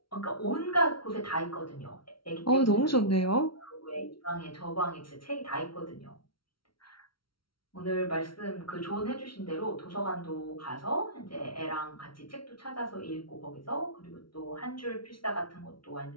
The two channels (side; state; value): right; late; 0.74 ms